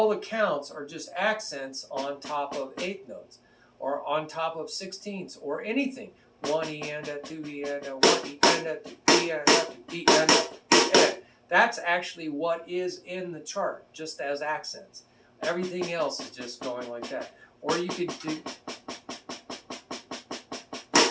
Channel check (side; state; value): both; identical; correlation 1.00